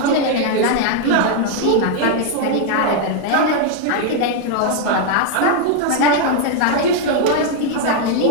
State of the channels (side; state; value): both; different; correlation 0.00